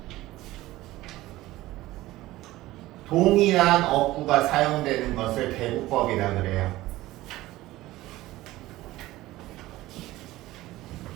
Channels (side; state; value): left; quieter; 17.2 dB